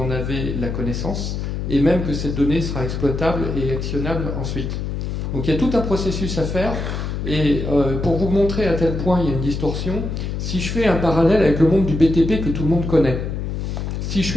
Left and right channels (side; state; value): left; noise; hum, 3 dB below the sound